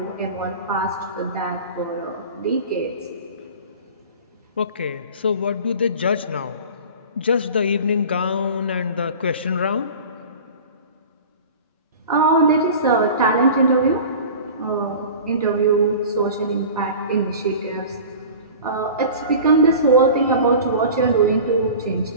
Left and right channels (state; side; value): inverted; both; correlation -0.38